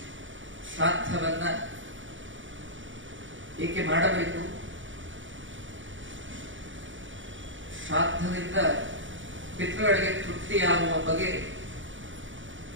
ಶ್ರಾದ್ದವನ್ನ ಏಕೆ ಮಾಡಬೇಕು, ಶ್ರಾದ್ದದಿಂದ ಪಿತೃಗಳಿಗೆ ತೃಪ್ತಿಯಾಗುವ ಬಗೆ,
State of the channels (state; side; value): late; left; 0.56 ms